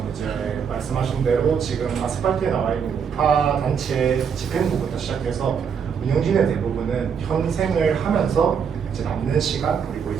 이제 말씀하신 대로 지금 아스팔트에 나와 있는 우파 단체 집행부부터 시작해서 운영진의 대부분은 현생을 하면서 이제 남는 시간 그리고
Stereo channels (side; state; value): left; quieter; 6.9 dB